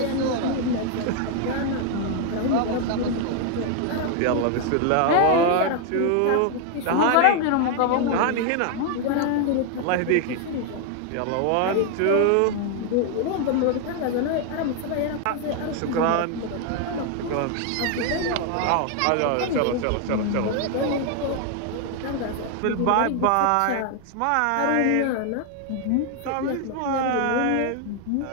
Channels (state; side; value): different; both; correlation 0.00